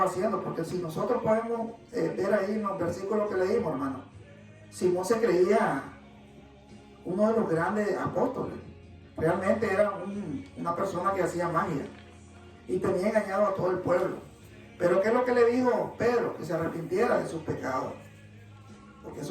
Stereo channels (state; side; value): identical; both; correlation 1.00